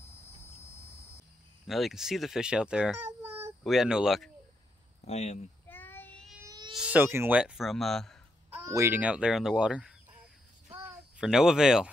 Well, you can see the fish out there. We had no luck. I am soaking wet from wading out there in the water. For no avail.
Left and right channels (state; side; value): normal; both; correlation 0.80